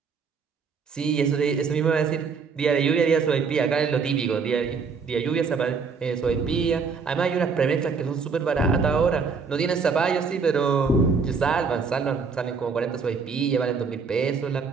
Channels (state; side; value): quieter; left; 5.3 dB